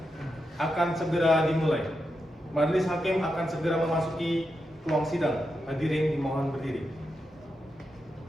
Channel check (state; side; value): normal; both; correlation 0.86